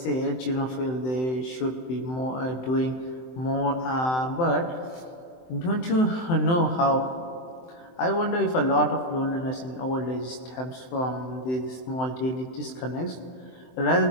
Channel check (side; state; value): right; late; 23 ms